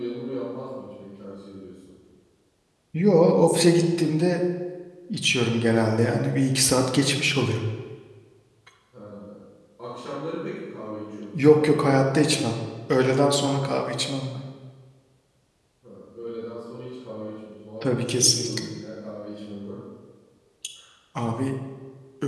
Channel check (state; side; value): identical; both; correlation 1.00